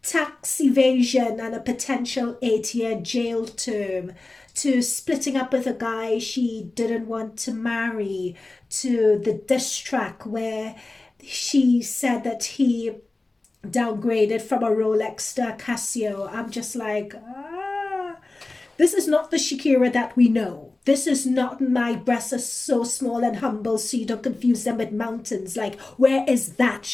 tax evasion and a potential 8-year jail term to splitting up with a guy she didn't want to marry to the diss track where she said that he downgraded from a Rolex to a Casio. I'm just like, this is not the Shakira that we know. This is not my breasts are so small and humble so you don't confuse them with mountains. Like, where is that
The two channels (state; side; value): quieter; right; 3.1 dB